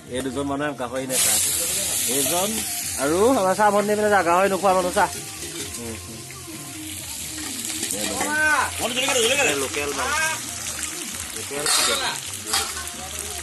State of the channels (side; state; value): both; identical; correlation 1.00